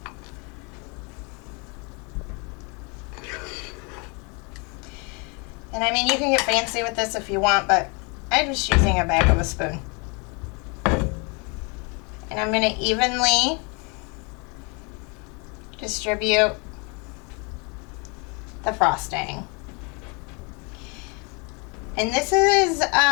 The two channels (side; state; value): right; quieter; 32.1 dB